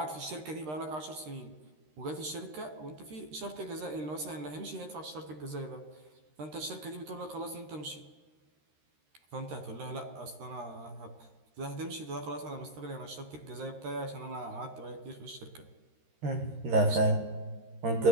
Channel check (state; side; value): late; left; 13 ms